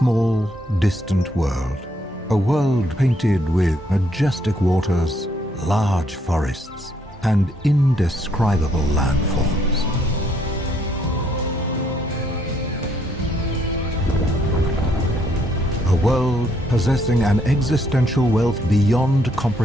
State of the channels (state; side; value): normal; both; correlation 0.70